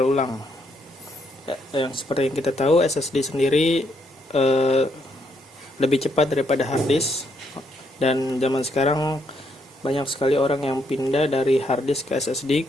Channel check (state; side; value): normal; both; correlation 0.75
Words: ulang. Yang seperti yang kita tahu, SSD sendiri lebih cepat daripada hard disk, dan zaman sekarang banyak sekali orang yang pindah dari hard disk ke SSD